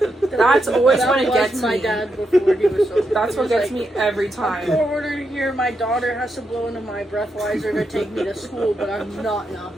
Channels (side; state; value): both; normal; correlation 0.83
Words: that's always That when it was gets my me. dad before he was sober. That's He what was gets like, me every I'm time. forwarded here. My daughter has to blow into my breathalyzer to take me to school, but I'm not an